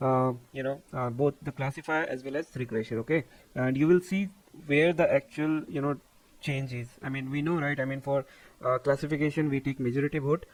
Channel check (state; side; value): identical; both; correlation 1.00